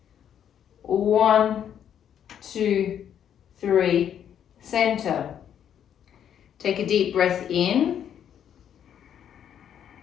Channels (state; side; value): quieter; right; 9.3 dB